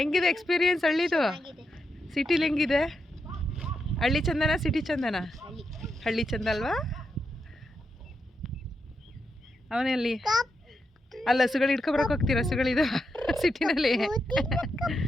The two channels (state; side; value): normal; both; correlation 0.84